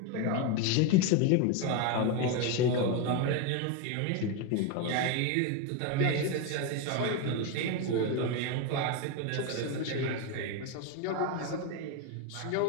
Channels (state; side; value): different; both; correlation 0.02